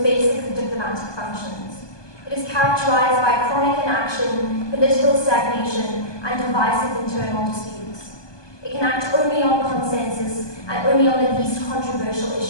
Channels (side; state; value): right; late; 1.2 ms